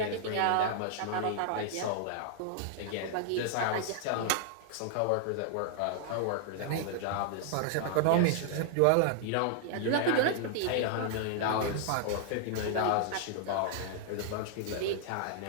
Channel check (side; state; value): both; different; correlation -0.01